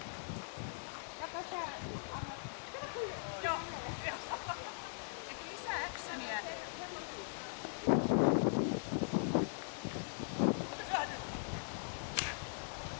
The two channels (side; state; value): right; silent; digital silence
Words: Kato sä, anna. Joo. Lisää actionia.